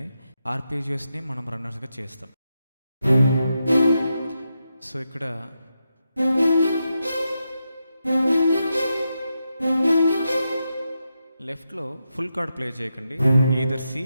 ఆర్పీజియస్ని మనం రన్నర్స్గా చేస్తాం. సో ఇక్కడ లెఫ్ట్లో ఫుల్ కార్డ్ ప్లే చేయకండి, ఈదర్ సి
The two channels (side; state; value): both; inverted; correlation -0.86